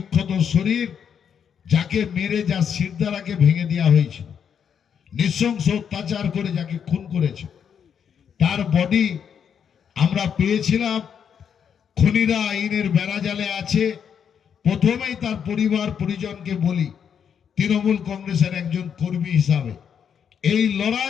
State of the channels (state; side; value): quieter; right; 7.7 dB